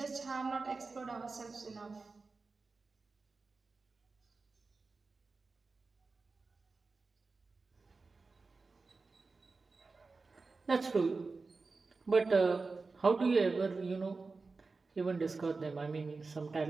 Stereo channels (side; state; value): left; quieter; 4.0 dB